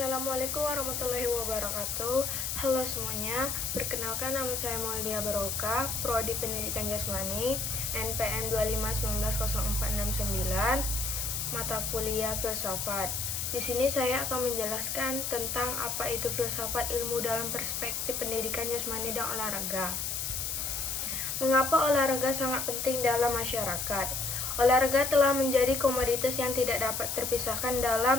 warahmatullahi wabarakatuh. Halo semuanya, perkenalkan nama saya Maulia Baroka, Prodi Pendidikan Jasmani, NPM 251904669, mata kuliah Filsafat. Di sini saya akan menjelaskan tentang apa itu filsafat ilmu dalam perspektif pendidikan jasmani dan olahraga. Mengapa olahraga sangat penting dalam masyarakat? Olahraga telah menjadi komoditas yang tidak dapat terpisahkan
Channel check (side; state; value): left; noise; hiss, 2 dB below the sound